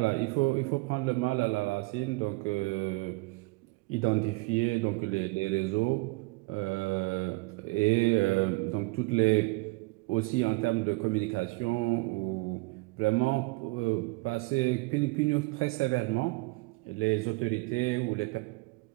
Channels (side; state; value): left; quieter; 24.6 dB